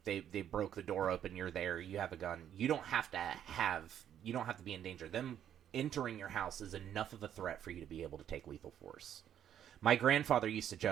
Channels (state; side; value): quieter; left; 10.0 dB